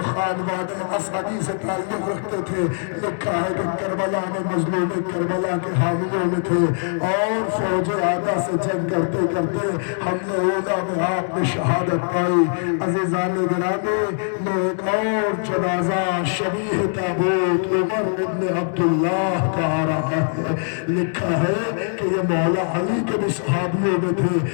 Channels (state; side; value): silent; right; digital silence